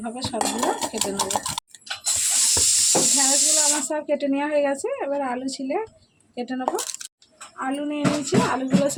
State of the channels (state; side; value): identical; both; correlation 1.00